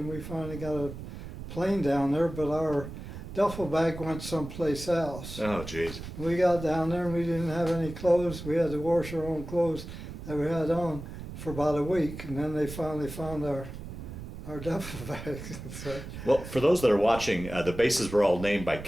we finally got a plane down there, but our duffel bag went someplace else. Oh, jeez. We got down there and we didn't have any clothes. We had to wash our own clothes that we had on for about a week, and then they finally found our duffel bags. So, well, for those that are watching, the bases were all named by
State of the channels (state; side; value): noise; right; rumble, 10 dB below the sound